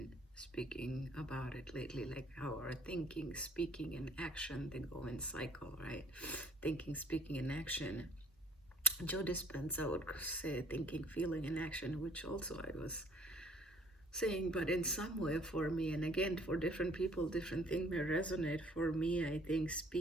speaking about it lately, like how our thinking, speaking, and action, they go in cycle, right? Thinking, speaking, and action. Joe Dispenza would say thinking, feeling, and action, which also I was saying, but in some way for me, and again, for different people, different things may resonate. For me, I think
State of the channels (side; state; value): both; normal; correlation 0.56